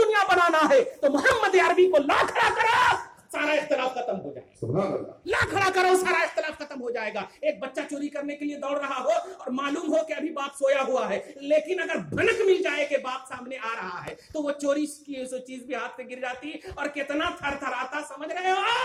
بنانا ہے, تو محمد عربی کو لا کھڑا کرو, سارا اختلاف ختم ہو جائے گا. لا کھڑا کرو, سارا اختلاف ختم ہو جائے گا. ایک بچہ چوری کرنے کے لیے دوڑ رہا ہو اور معلوم ہو کہ ابھی باپ سویا ہوا ہے, لیکن اگر بھنک مل جائے کہ باپ سامنے آ رہا ہے تو وہ چوری کی چیز بھی ہاتھ سے گر جاتی اور کتنا تھر تھراتا, سمجھ رہے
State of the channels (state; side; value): identical; both; correlation 1.00